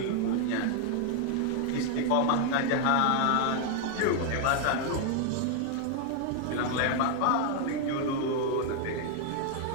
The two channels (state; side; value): different; both; correlation 0.00